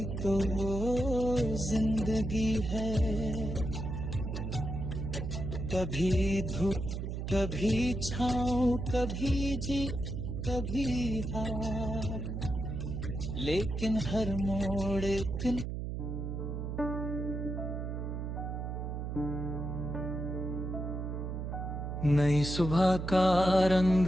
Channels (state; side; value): noise; right; hum, 4 dB below the sound